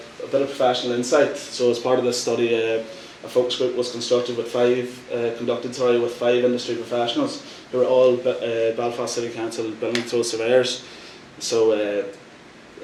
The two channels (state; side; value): identical; both; correlation 1.00